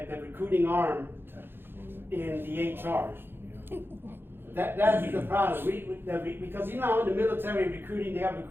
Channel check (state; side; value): late; left; 0.10 ms